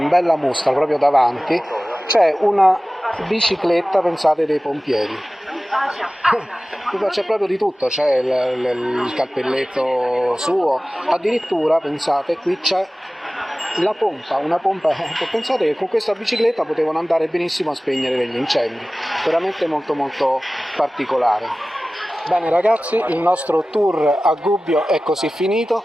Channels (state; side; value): normal; both; correlation 0.97